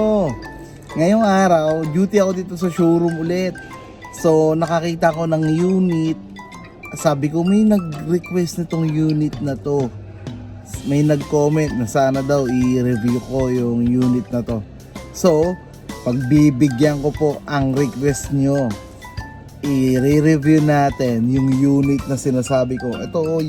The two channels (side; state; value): both; identical; correlation 1.00